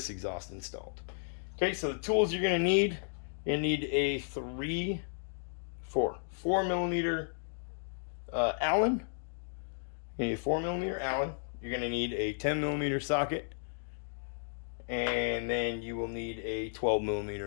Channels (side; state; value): right; silent; digital silence